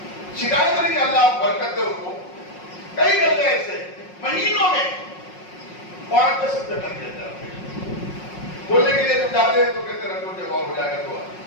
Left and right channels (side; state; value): right; late; 5.5 ms